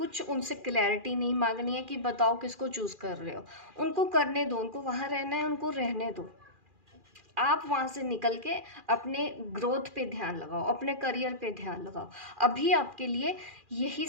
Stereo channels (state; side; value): late; left; 2.4 ms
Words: उनसे क्लैरिटी नहीं मांगनी है कि बताओ किसको चूज कर रहे हो। उनको करने दो, उनको वहाँ रहना है, उनको रहने दो। आप वहाँ से निकल के अपने ग्रोथ पे ध्यान लगाओ, अपने करियर पे ध्यान लगाओ। अभी आपके लिए यही